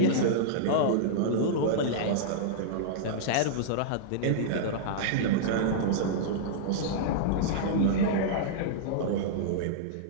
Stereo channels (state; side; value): different; both; correlation -0.02